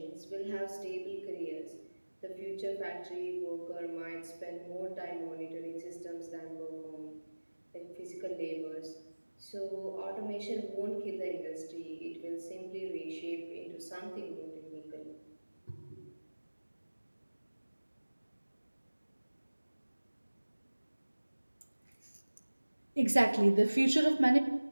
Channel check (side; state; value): both; inverted; correlation -1.00